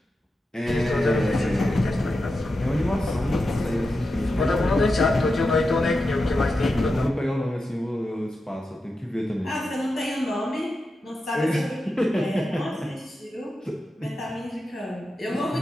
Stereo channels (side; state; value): both; normal; correlation 0.89